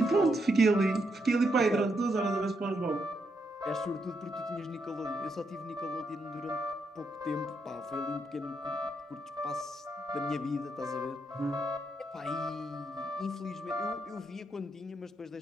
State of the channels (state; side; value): normal; both; correlation 0.79